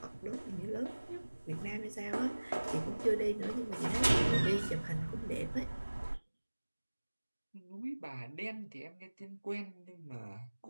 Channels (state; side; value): inverted; both; correlation -1.00